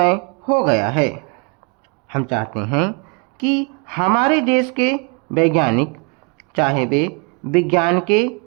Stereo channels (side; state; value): left; quieter; 33.2 dB